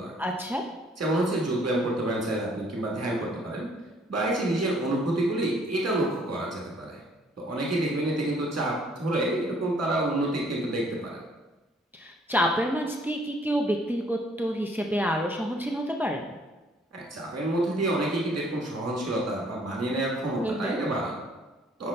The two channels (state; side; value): normal; both; correlation 0.61